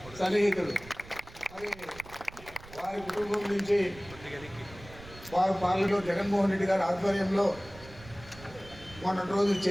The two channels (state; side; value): noise; right; rumble, 18 dB below the sound